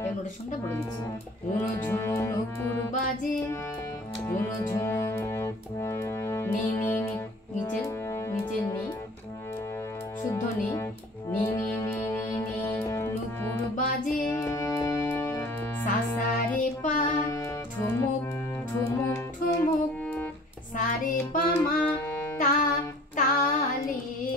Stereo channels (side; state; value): both; normal; correlation 0.49